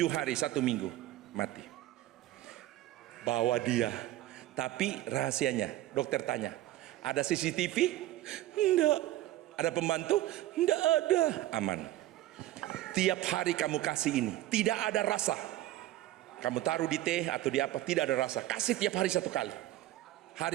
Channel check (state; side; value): quieter; left; 15.0 dB